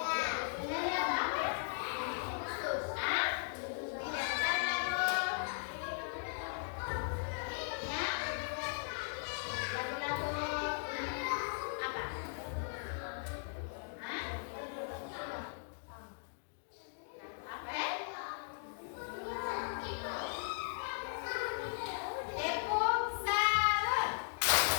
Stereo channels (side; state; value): right; silent; digital silence